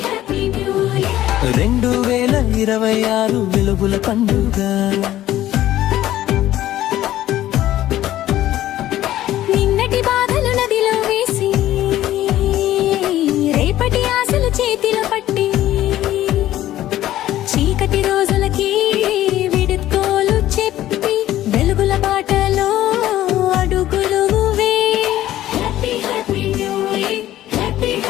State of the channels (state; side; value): quieter; right; 13.7 dB